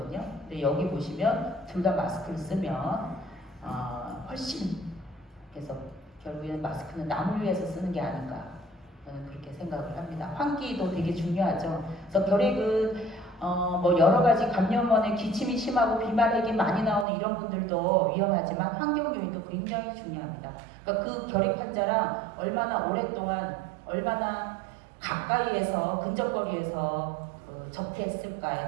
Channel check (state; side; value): drops out; left; at 17.1 s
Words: 근데 여기 보시면 둘 다 마스크를 쓰면 훨씬 그래서 결국에는 마스크는 남을 위해서 쓰는 게 아닌가 저는 그렇게 생각을 합니다. 환기도 되게 중요하죠. 그래서 결핵은 여러 가지 감염원의 기침이 심하고 비말핵이 많이 나오는 이런 분들도 위험하지만 환경 요인도 굉장히 중요합니다. 그러니까 그 결핵 환자랑 얼마나 오랫동안 얼마나 가까이에서 근접거리에서